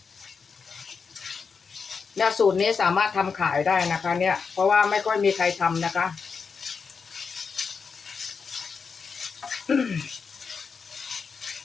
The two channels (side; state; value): right; quieter; 5.5 dB